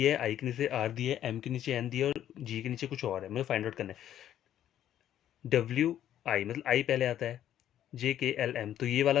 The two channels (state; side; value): quieter; right; 11.2 dB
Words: है, आई के नीचे आर दिया है, एम के नीचे एन दिया है, और जी के नीचे कुछ और है, मुझे फाइंड आउट करना है। डब्ल्यू आई मतलब आई पहले आता है, जे के एल एम। तो ये